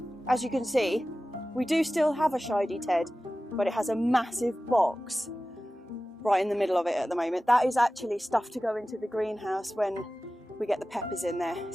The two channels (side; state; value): both; normal; correlation 0.95